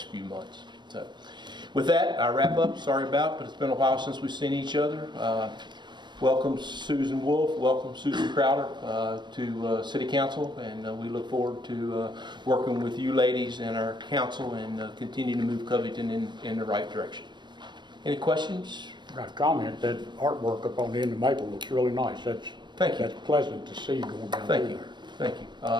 few months. So with that, I wrap up. Sorry but it's been a while since we've seen each other. Welcome Susan Wolf, welcome Susan Crowder to City Council, and we look forward to working with you ladies and our council and continue to move Covington in the right direction. Any questions? I got a comment that artwork up on the end of Maple looks really nice. Thank you. That's pleasant to see going down Thank there. you. Thank you.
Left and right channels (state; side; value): late; left; 0.22 ms